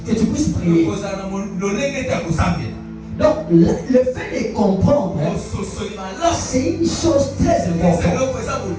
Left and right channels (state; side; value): identical; both; correlation 1.00